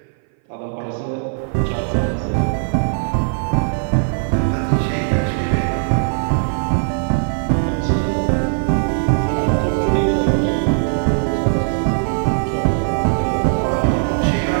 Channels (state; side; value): silent; left; 58 dB below the other